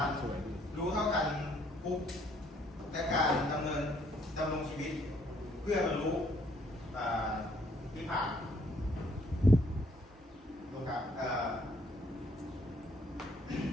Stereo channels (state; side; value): normal; both; correlation 0.66